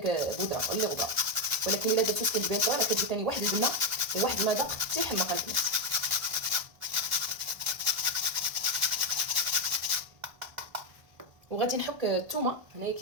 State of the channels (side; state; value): left; late; 1.5 ms